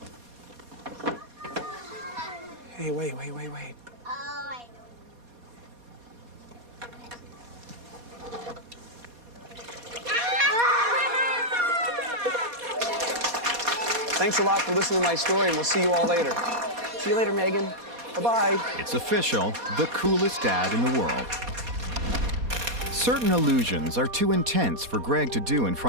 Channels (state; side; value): late; left; 4.2 ms